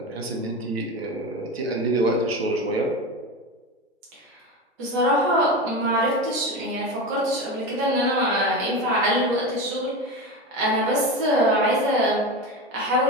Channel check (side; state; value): both; normal; correlation 0.23